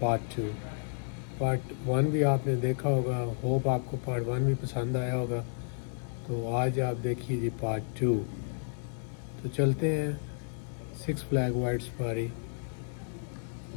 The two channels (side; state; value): right; silent; 57 dB below the other